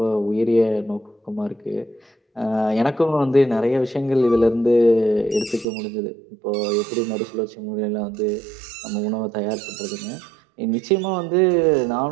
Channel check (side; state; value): left; drops out; at 5.7 s